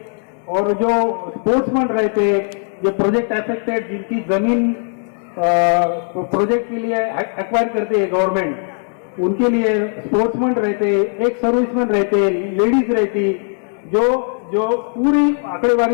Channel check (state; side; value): silent; right; 56 dB below the other